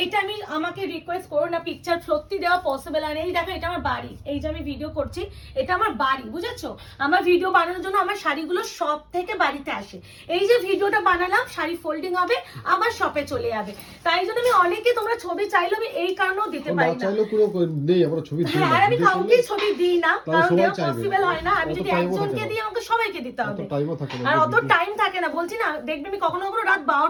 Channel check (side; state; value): both; identical; correlation 1.00